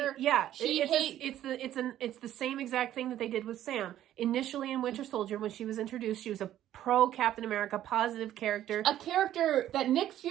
Yeah, it's the same exact thing that they did with Sam. Initially in Winter Soldier, when she was introduced, she was a pro Captain America, positive character. A character that Nick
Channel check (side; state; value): left; quieter; 12.3 dB